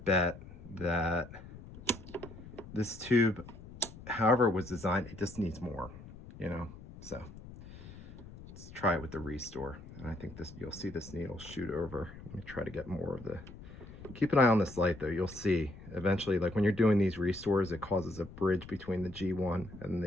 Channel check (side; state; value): left; noise; rumble, 16 dB below the sound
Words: that this tube, however it was designed, it just needs more, you know. So let's try it with the restore. And I think this, you'll see this needle shoot over. Let me try to get more of the, keep an eye on this light though. You'll see eventually, like when you're doing these restores, it causes a bridge between the G1 and